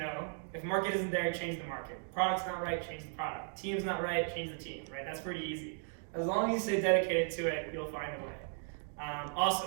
market isn't there, change the market. Product's not right, change the product. Team's not right, change the team, right? That's pretty easy. As long as you stay dedicated to it, you'll find a way.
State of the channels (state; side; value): silent; left; 54 dB below the other